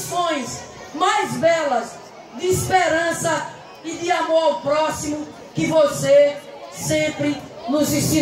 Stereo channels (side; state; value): both; identical; correlation 1.00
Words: mais belas de esperança e de amor ao próximo que você sempre nos